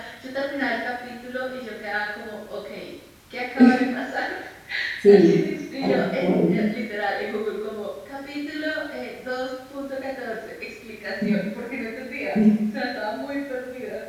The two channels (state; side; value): identical; both; correlation 1.00